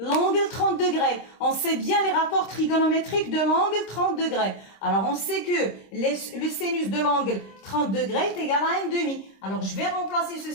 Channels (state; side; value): late; right; 26 ms